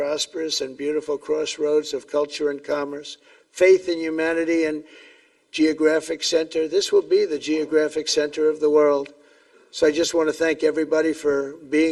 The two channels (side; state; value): both; identical; correlation 1.00